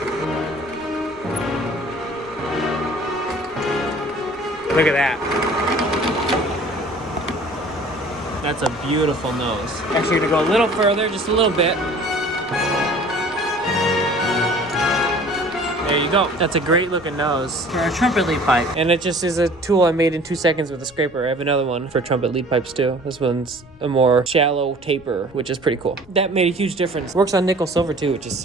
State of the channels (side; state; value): left; noise; rumble, 25 dB below the sound